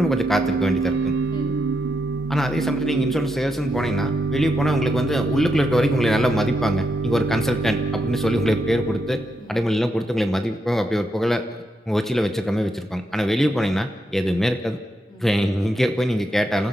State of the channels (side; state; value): both; normal; correlation 0.82